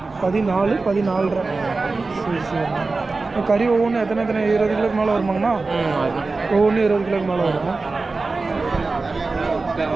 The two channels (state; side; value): quieter; left; 3.8 dB